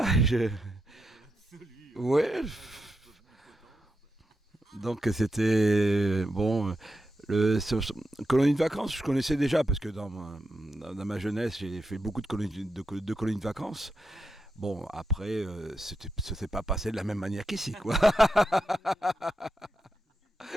ouais. Donc c'était bon. Colonie de vacances, je connaissais déjà parce que dans ma jeunesse, j'ai fait beaucoup de colonies de vacances. Bon, après, ça s'est pas passé de la même manière qu'ici, quoi.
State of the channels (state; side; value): normal; both; correlation 0.86